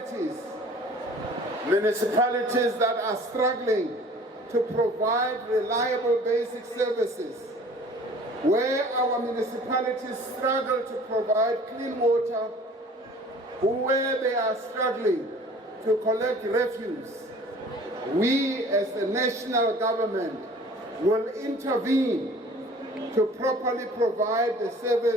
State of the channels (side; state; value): both; normal; correlation 0.49